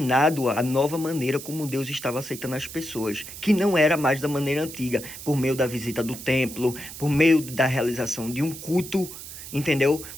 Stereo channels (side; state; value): right; noise; hiss, 12 dB below the sound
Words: a nova maneira como Deus estava aceitando as pessoas, que não era mais da maneira antiga, por meio da visita do templo, por meio da realização de um culto, entendeu?